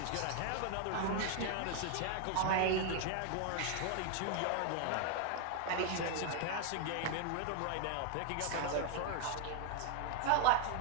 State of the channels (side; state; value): both; different; correlation 0.00